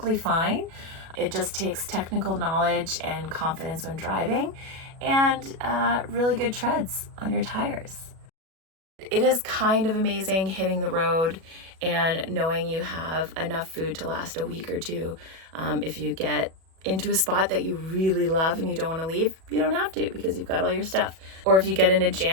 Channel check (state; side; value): late; left; 37 ms